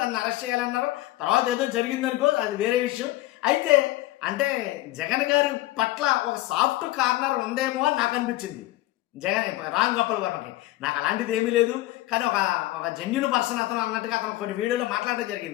అరెస్ట్ చేయాలన్నారు. తర్వాత ఏదో జరిగిందనుకో, అది వేరే విషయం. అయితే అంటే జగన్ గారి పట్ల ఒక సాఫ్ట్ కార్నర్ ఉందేమో అని నాకు అనిపించింది రామ్ గోపాల్ వర్మకి. నాకు అలాంటిది ఏమీ లేదు, కానీ ఒక జెన్యున్ పర్సన్ అతను అన్నట్టుగా అతను కొన్ని వీడియోలో మాట్లాడడం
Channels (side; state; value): right; quieter; 17.5 dB